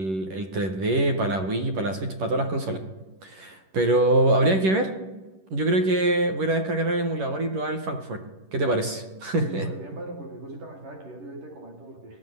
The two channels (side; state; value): left; late; 11 ms